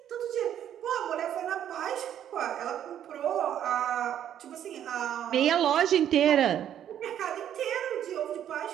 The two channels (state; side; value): quieter; left; 10.3 dB